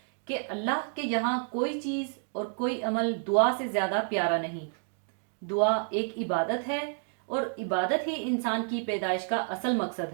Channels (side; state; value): left; silent; 58 dB below the other